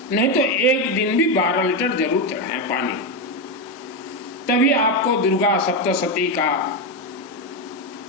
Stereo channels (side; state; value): both; normal; correlation 0.09